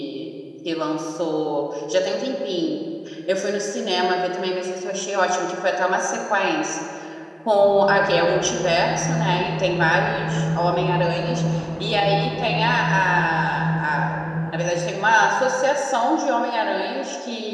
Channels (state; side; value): identical; both; correlation 1.00